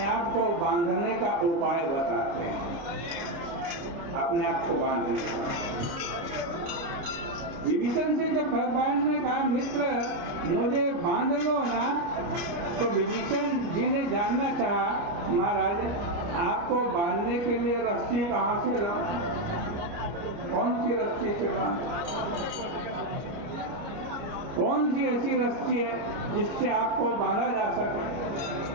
आप को बांधने का उपाय बताते हैं, अपने आप को बांधने का। विभीषण से जब भगवान ने कहा, मित्र मुझे बांध लो ना, तो विभीषण जी ने जानना चाहा, महाराज आपको बांधने के लिए रस्सी कहाँ से लाऊं? कौन सी रस्सी से बांधूं? कौन सी ऐसी रस्सी है जिससे आपको बांधा जा सके?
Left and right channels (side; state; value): left; late; 29 ms